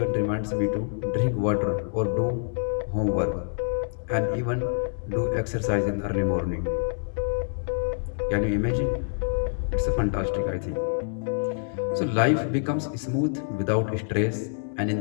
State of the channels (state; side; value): silent; right; 60 dB below the other